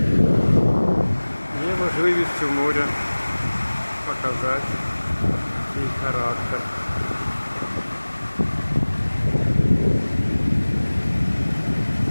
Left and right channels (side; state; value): both; inverted; correlation -1.00